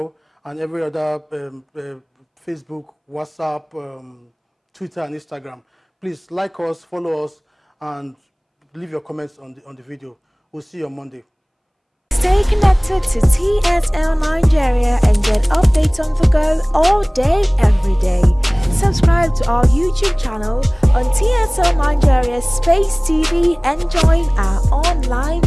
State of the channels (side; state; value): both; identical; correlation 1.00